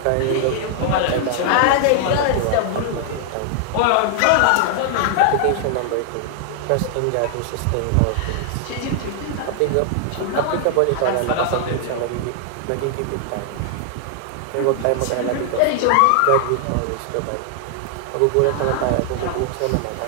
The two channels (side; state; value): both; different; correlation 0.00